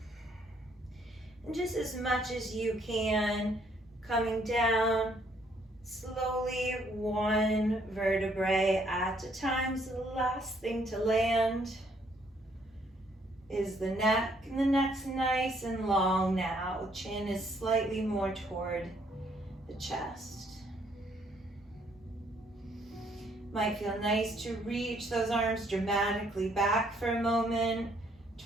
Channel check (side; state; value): both; normal; correlation 0.67